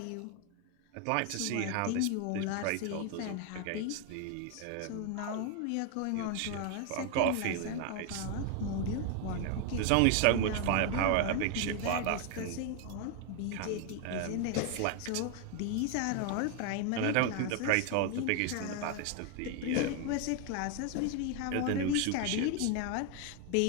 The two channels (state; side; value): different; both; correlation 0.01